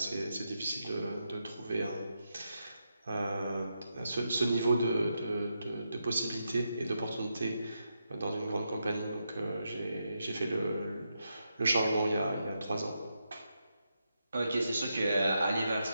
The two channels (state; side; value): inverted; both; correlation -0.84